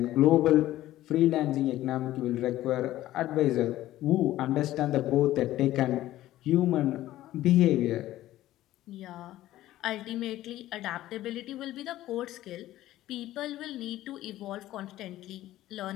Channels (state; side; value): quieter; right; 14.7 dB